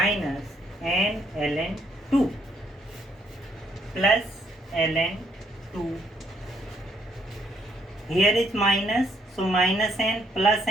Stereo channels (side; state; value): both; normal; correlation 0.71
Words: n ln 2 plus ln 2. Here is minus, so minus n plus